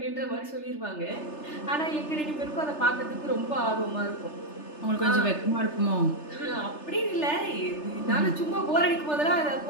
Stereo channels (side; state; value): right; late; 3.3 ms